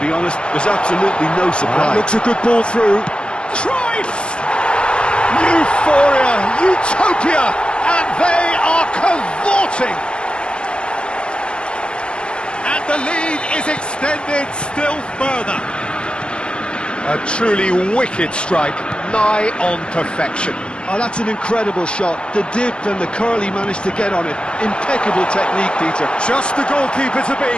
honest. There's absolutely no surprise. Looks a good ball through. Cruyff! Euphoria, utopia, and they are cavorting. And the lead is extended still further. A truly wicked strike, nigh on perfection. Oh, that's an incredible shot. The dip and the curl he managed to get on it. Impeccable technique, Peter. Just the goalkeeper to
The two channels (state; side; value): late; right; 0.055 ms